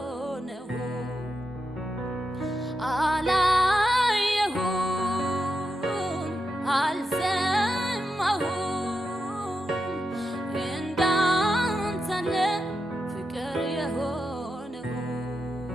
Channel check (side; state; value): both; normal; correlation 0.87